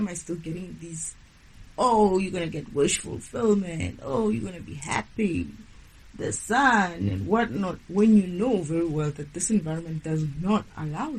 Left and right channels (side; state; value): both; identical; correlation 1.00